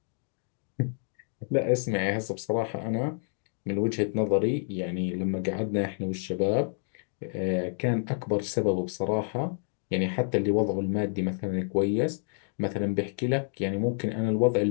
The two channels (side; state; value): right; silent; digital silence